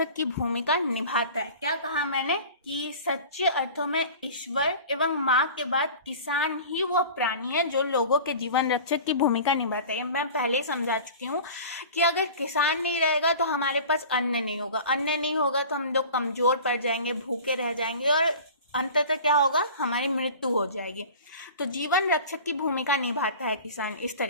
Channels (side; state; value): both; inverted; correlation -0.39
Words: की भूमिका निभाता है। क्या कहा मैंने? कि सच्चे अर्थों में ईश्वर एवं माँ के बाद किसान ही वो प्राणी है जो लोगों के जीवन रक्षक की भूमिका निभाता है। मैं पहले ही समझा चुकी हूँ कि अगर किसान नहीं रहेगा तो हमारे पास अन्न नहीं होगा, अन्न नहीं होगा तो हम लोग कमजोर पड़ जाएंगे, भूखे रह जाएंगे, और अंततः क्या होगा? हमारी मृत्यु हो जाएगी। तो जीवन रक्षक की भूमिका निभाता है किसान इस